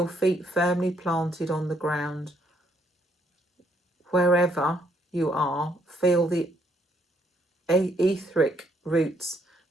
feet firmly planted on the ground. Wherever you are, feel the etheric roots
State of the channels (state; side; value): normal; both; correlation 0.70